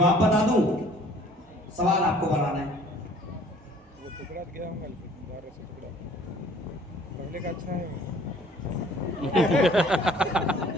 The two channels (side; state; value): both; normal; correlation 0.54